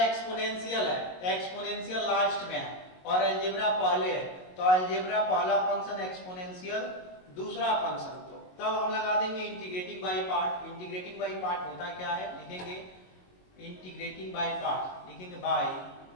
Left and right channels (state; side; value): late; right; 22 ms